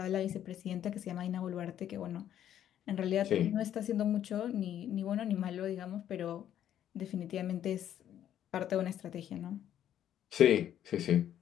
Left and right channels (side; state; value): right; quieter; 10.7 dB